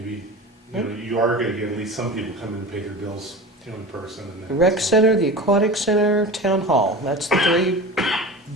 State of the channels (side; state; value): both; normal; correlation 0.32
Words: you are gonna get at least some people come in and pay their bills, in person. And The rec center, the aquatic center, town hall, that's the three